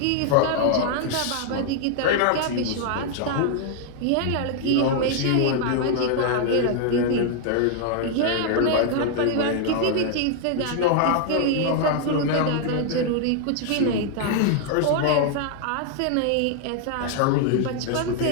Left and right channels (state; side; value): different; both; correlation 0.00